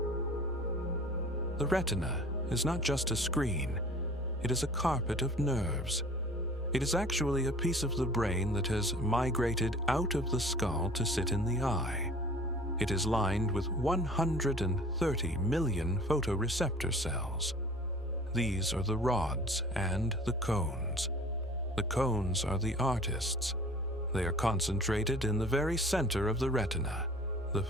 The retina is not just a screen, it is a carpet of nerves. It is actually a piece of the brain that has migrated out of the skull to sit in the eye. It is lined with 130 million photoreceptor cells. These are the rods and the cones. The cones are the artists. They are concentrated in the very center of the retina, the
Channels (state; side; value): normal; both; correlation 0.47